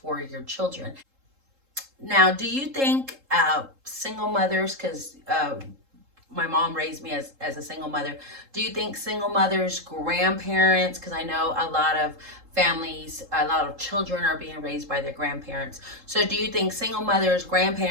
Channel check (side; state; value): left; late; 3.7 ms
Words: your children. Now, do you think single mothers, because my mom raised me as a single mother. Do you think single mothers, grandparents, because I know a lot of families, a lot of children are being raised by their grandparents. So do you think single mothers,